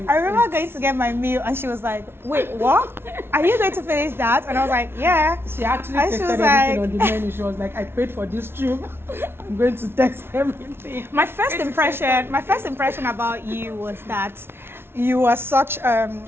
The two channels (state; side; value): late; left; 0.12 ms